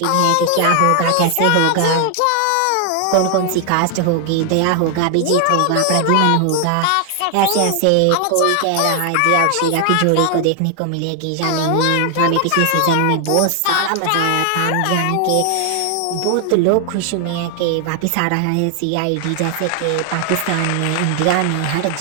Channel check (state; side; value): different; both; correlation 0.00